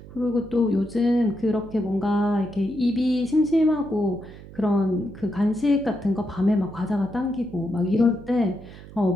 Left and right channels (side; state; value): right; noise; hum, 17 dB below the sound